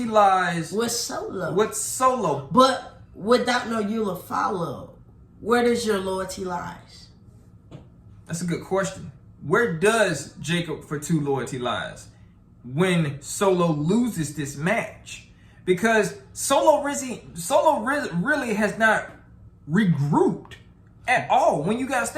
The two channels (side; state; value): both; identical; correlation 1.00